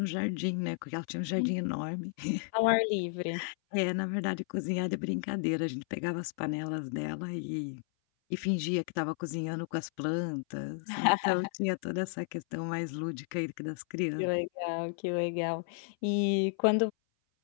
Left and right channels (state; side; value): silent; right; 56 dB below the other